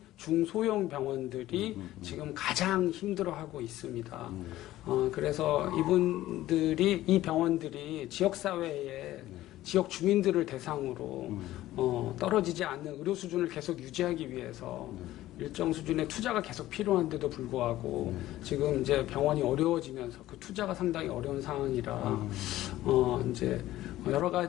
중소형 병원들이 지금 가장 힘들어하고 있습니다. 그래서 이 병원들이 지역사회에 지역 주민들을 대상으로 떨어지지 않는 의료 수준을 계속 유지하기 위해서 일정 수준의 투자가 계속 필요한데도 불구하고 지금 이제 병원이 어려워지면서 그 투자가 상당히 어려운 상황이라 이제 여러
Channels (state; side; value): quieter; right; 15.1 dB